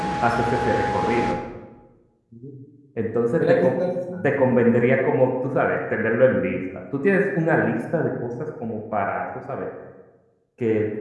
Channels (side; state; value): both; identical; correlation 1.00